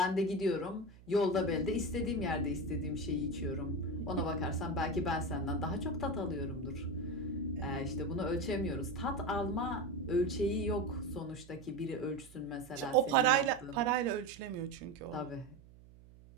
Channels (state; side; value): noise; right; hum, 22 dB below the sound